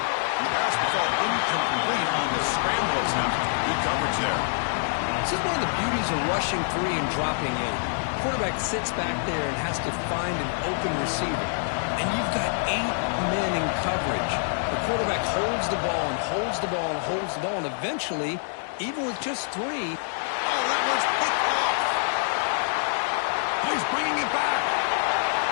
pass will fall incomplete on the scramble attempt. Good coverage there. This is one of the beauties of rushing 3 and dropping 8. Quarterback sits back there and has to find an open receiver. And you've got 8 men in coverage. The quarterback holds the ball and holds the ball and holds the ball, and eventually, even with just 3... Oh, that one's picked off. He's bringing it back.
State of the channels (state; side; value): silent; right; digital silence